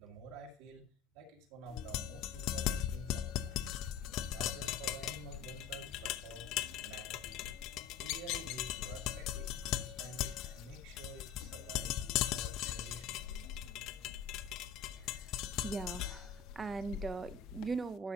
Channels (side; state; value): right; quieter; 7.0 dB